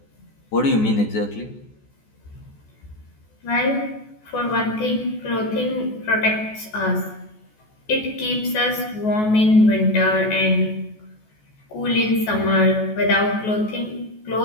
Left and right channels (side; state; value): right; late; 14 ms